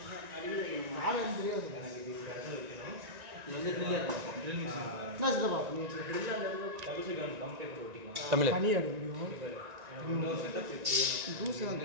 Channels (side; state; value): left; late; 1.9 ms